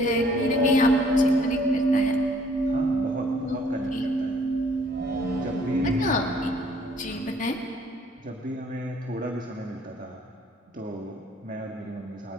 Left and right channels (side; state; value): both; normal; correlation 0.60